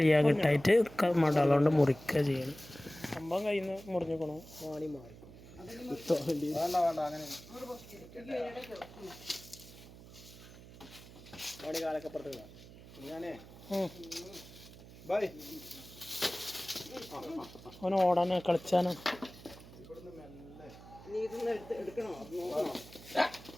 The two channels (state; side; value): noise; right; hum, 18 dB below the sound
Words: കിട്ടായിട്ട് മടലോണ്ട് മുറിക്കുക ചെയ്യണം. സംഭവം കയ്യിൽ നിന്ന് മുറിഞ്ഞിക്കണോ വാണി മാറിക്കും. അവന് ഓടാനോ കളിച്ചാനോ.